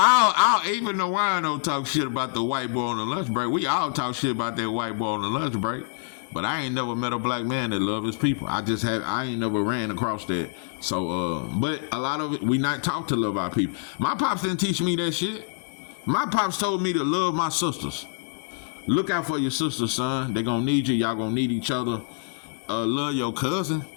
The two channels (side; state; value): right; silent; 61 dB below the other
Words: don't even know why I don't talk shit about the white boy on the lunch break. We all talk shit about that white boy on the lunch break. But I ain't never met a black man that love his people. I ain't never ran across that. So, but a lot of it, we not taught to love our people. My pops didn't teach me that shit. My pops told me to love my sisters. Look out for your sisters, son. They gonna need you. Y'all gonna need each other. Love your cousin.